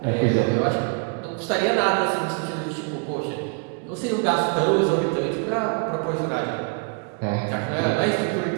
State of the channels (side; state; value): left; quieter; 38.0 dB